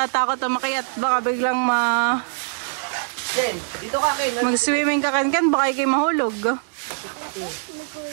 na makayat. Baka biglang Dito ka, Ken. mag-swimming ka kan baka ikay mahulog.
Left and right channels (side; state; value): left; silent; digital silence